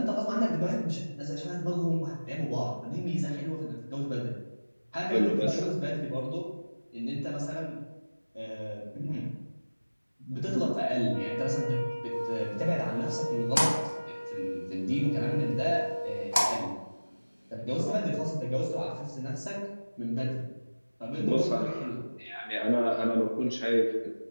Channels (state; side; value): inverted; both; correlation -1.00